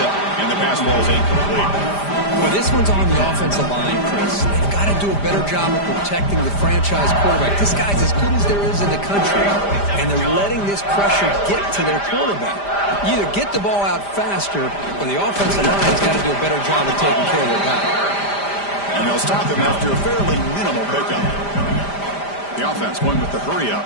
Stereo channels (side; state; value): right; late; 5.0 ms